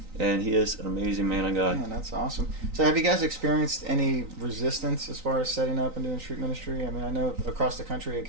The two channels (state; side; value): late; left; 3.9 ms